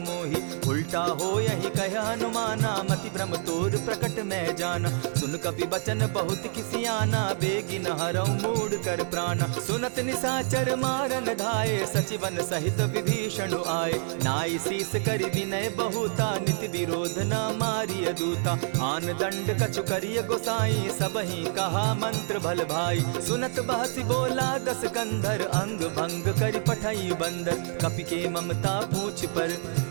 मोही। उल्टा हो यही कह हनुमाना, मति भ्रम तोर प्रकट मैं जाना। सुन कपि बचन बहुत किसियाना, बेगी न हरऊ मूड कर प्राणा। सुनत निसाचर मारन धाये, सचिवन सहित विभीषण आए। नाई शीस करि विनय बहुता, नित विरोध न मारिय दूता। आन दंड कछु करिय गोसाई, सबहि कहा मंत्र भल भाई। सुनत बहसी बोला दस कंधर, अंग भंग करि पठई बंदर। कपि के ममता पूछ पर,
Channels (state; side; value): silent; left; digital silence